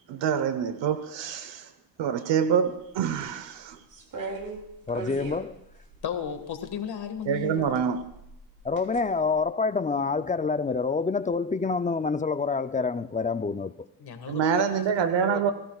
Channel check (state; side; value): normal; both; correlation 0.09